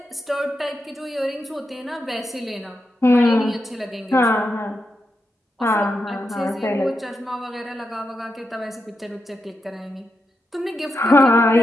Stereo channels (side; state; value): both; normal; correlation 0.86